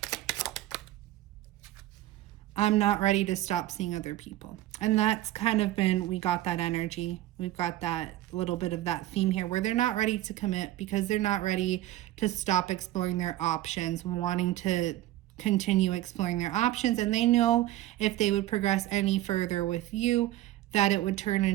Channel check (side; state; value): left; quieter; 15.0 dB